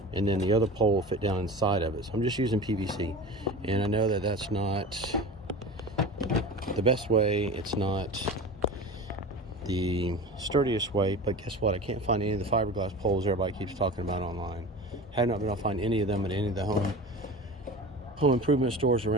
and then the other pole will fit down inside of it. So I'm just using PVC, and I know that that's not the best way. It's not the sturdiest way, but guess what? I can't find any of the fiberglass poles everybody keeps talking about online. Have not been able to find any of them at any of the home improvement stores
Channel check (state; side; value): normal; both; correlation 0.33